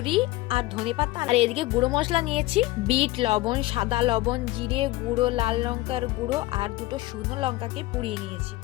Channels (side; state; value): right; quieter; 18.7 dB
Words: আর ধনেপাতা। আর এদিকে গুঁড়ো মশলা নিয়েছি বিট লবণ, সাদা লবণ, জিরে গুঁড়ো, লাল লঙ্কার গুঁড়ো আর দুটো শুকনো লঙ্কাকে পুড়িয়ে নিয়েছি।